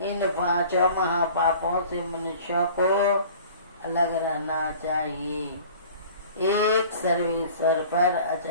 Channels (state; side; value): inverted; both; correlation -0.46